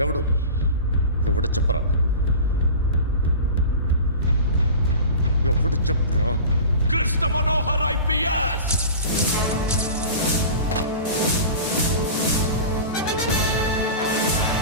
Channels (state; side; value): inverted; both; correlation -0.35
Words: ఎవడు చెప్పరా? ఎవడు చెప్పరా? Krishna Manohar IPS.